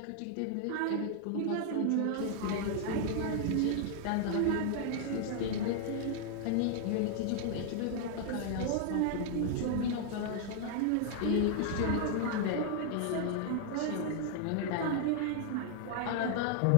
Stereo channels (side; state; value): both; different; correlation -0.01